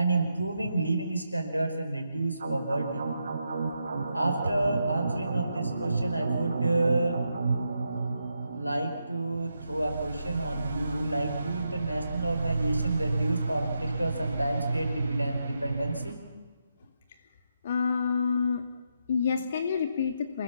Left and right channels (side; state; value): both; inverted; correlation -0.83